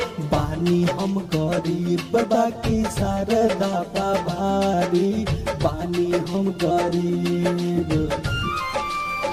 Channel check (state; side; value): identical; both; correlation 1.00